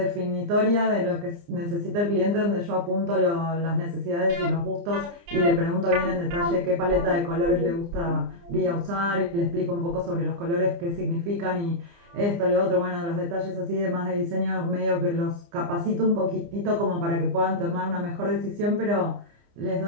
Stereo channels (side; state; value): left; late; 29 ms